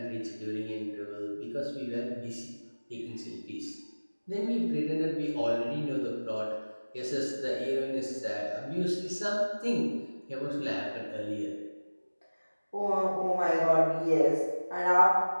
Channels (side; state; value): both; inverted; correlation -1.00